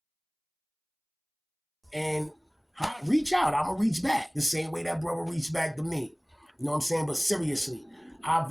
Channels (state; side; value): identical; both; correlation 1.00